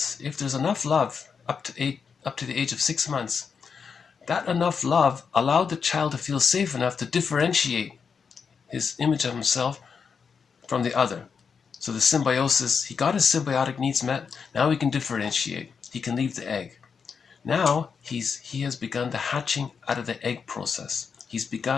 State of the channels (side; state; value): right; quieter; 6.0 dB